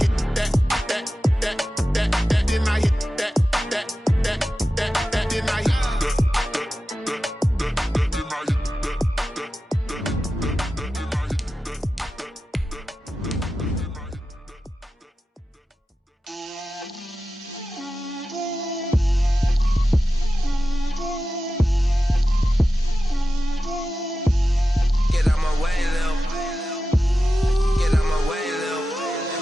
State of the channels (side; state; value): both; normal; correlation 0.93